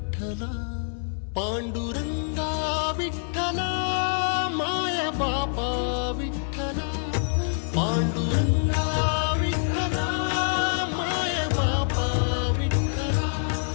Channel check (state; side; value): silent; right; digital silence